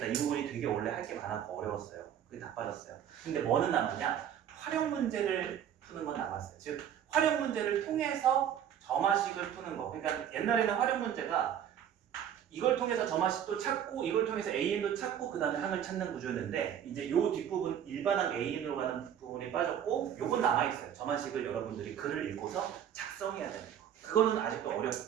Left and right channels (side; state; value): left; quieter; 9.5 dB